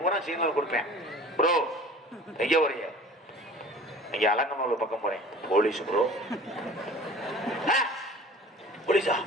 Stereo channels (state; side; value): normal; both; correlation 0.44